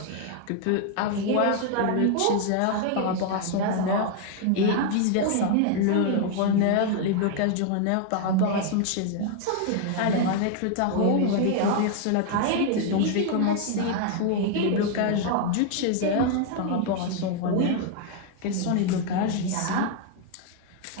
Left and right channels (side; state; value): both; different; correlation 0.00